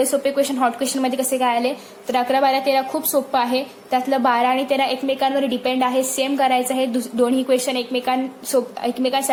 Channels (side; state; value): both; identical; correlation 1.00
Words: सोपे क्वेश्चन हॉट क्वेश्चनमध्ये कसे काय आले, तर 11 12 13 खूप सोपं आहे. त्यातलं 12 आणि 13 एकमेकांवर डिपेंड आहे, सेम करायचं आहे. दोन्ही क्वेश्चन